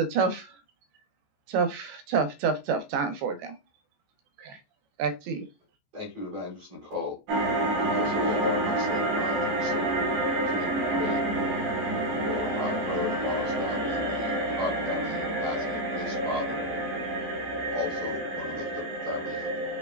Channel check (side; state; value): left; late; 14 ms